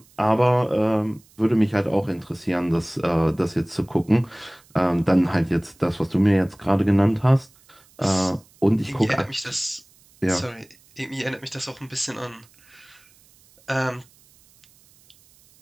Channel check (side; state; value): right; noise; hiss, 30 dB below the sound